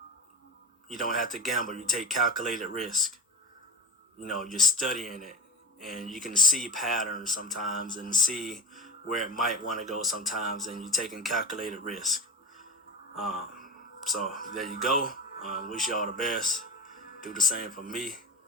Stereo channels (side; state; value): both; normal; correlation 0.28